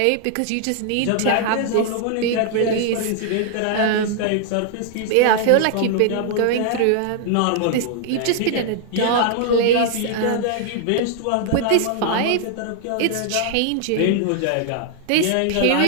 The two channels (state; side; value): different; both; correlation 0.00